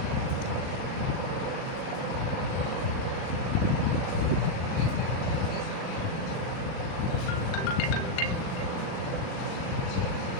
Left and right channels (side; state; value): right; late; 38 ms